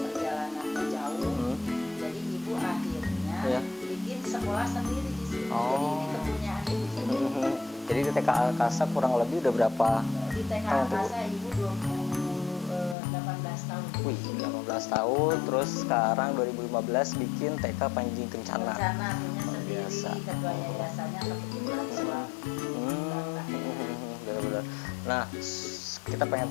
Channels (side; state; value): right; drops out; at 13.0 s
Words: jauh, jadi ibu akhirnya bikin sekolah sendiri di sini. Jadi ini kepunyaan ibu sendiri. Jadi di TK Angkasa kurang lebih udah berapa? Di TK Angkasa ibu 18 tahun. Wih, 18 tahun. Terus sekarang 2015 bikin TK Panji Kencana. Kencana punya sendiri, ketua yayasannya kebetulan suami. Benar-benar. Nah, kita pengen